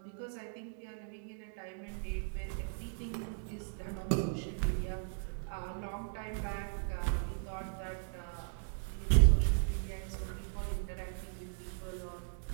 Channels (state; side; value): silent; left; digital silence